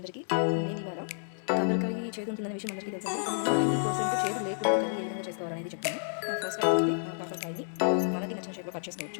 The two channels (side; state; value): right; silent; digital silence